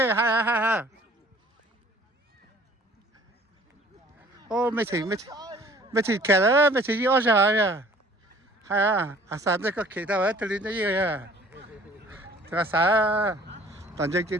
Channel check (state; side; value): normal; both; correlation 0.53